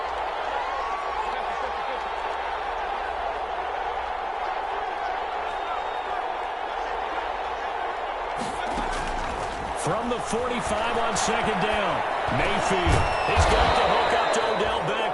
From the 45 on 2nd down, Mayfield. He's got the hook up to Odell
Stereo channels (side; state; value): both; identical; correlation 1.00